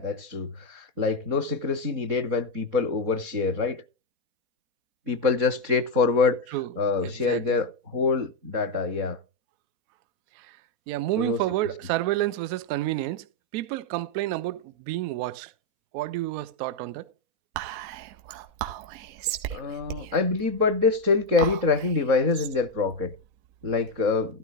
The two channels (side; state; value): left; late; 4.1 ms